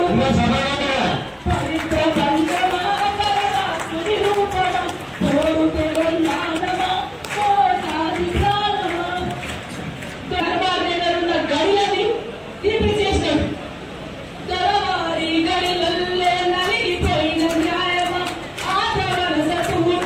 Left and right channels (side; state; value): both; identical; correlation 1.00